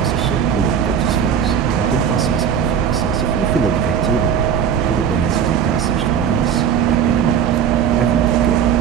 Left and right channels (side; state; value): left; quieter; 8.1 dB